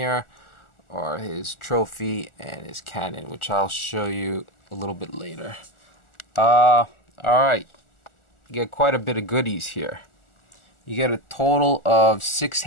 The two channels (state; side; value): late; right; 1.4 ms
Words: are his trophy and his cannon, which I'll show you a little bit later. Alright, you get quite a bit of goodies here. You get a total of 6